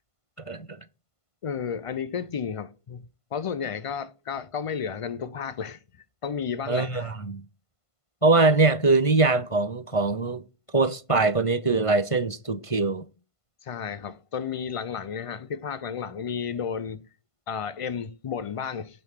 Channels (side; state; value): right; late; 1.5 ms